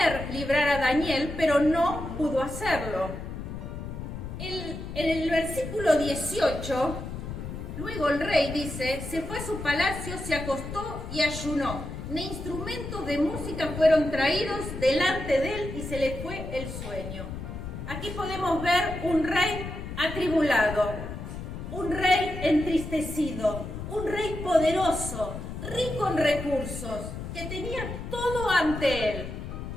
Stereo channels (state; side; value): noise; left; rumble, 8 dB below the sound